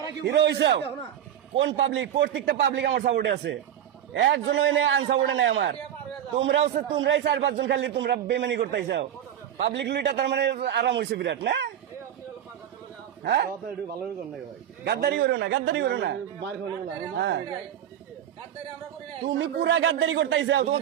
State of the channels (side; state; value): left; quieter; 10.3 dB